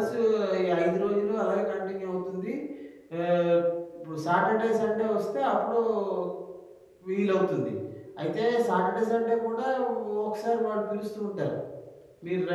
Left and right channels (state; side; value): identical; both; correlation 1.00